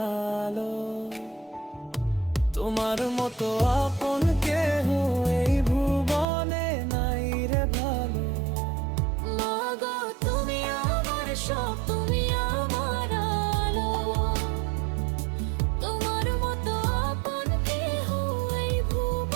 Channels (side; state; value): left; drops out; at 6.2 s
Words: আলো, তোমার মতো আপন কেহ এই ভুবনে নাই রে ভালো। মাগো তুমি আমার সব, তুমি আমার আলো, তোমার মতো আপন কেহ এই